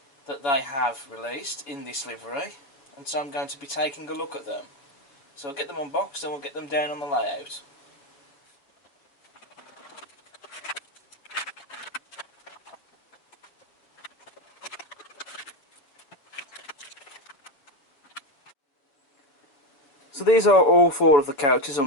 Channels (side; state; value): right; late; 7.1 ms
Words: that they have released in this livery, and so I'm going to be taking a look at them. So I'll get them unboxed and we'll get them down on the layout. So these are all 4 of the couches